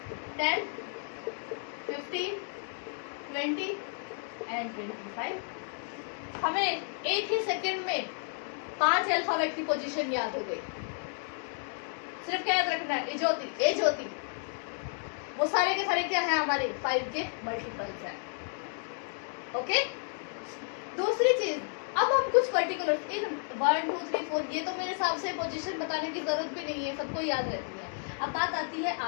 10 15 20 एंड 25. हमें एक ही सेकेंड में 5 अल्फाबेट की पोजीशन याद हो गई. सिर्फ क्या याद रखना है? ए ज्योति. वो सारे के सारे क्या है? हमारे 5 के मल्टीपल्स है. ओके. दूसरी चीज, अब हम कुछ पर्टिकुलर इन 1 2 3 4, ये तो मेरे हिसाब से पोजीशन बताने की जरूरत भी नहीं है, सबको याद रहती है. अब बात आती है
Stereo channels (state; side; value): silent; right; 56 dB below the other